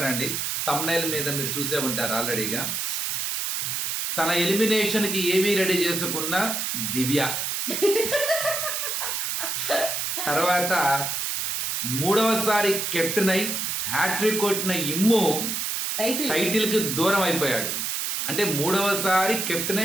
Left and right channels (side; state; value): right; noise; hiss, 1 dB below the sound